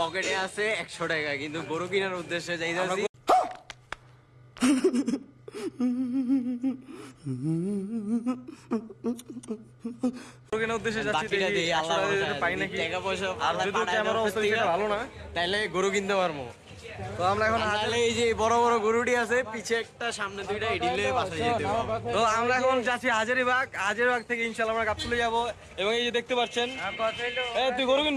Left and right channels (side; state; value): both; identical; correlation 1.00